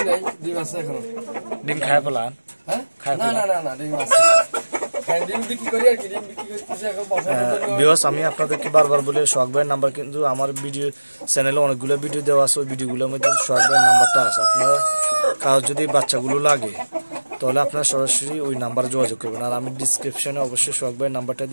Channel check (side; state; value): both; inverted; correlation -1.00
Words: ডিম খায় ফেলান? আমি আপনাদেরকে বারবার বলে সোহাগ ভাইয়ের নাম্বার, কিন্তু আমার ভিডিও চ্যানেলে অনেকগুলো ভিডিও দেওয়া আছে, ওই ভিডিওগুলোর মধ্যে সোহাগ ভাইয়ের নাম্বারটা আছে। আপনারা কারো যদি বাচ্চাগুলো লাগে তাহলে আপনারা সরাসরি ওই নাম্বারে যোগাযোগ করবেন, আর আমি ডিসক্রিপশনে অবশ্যই সোহাগ ভাইয়ের নাম্বারটা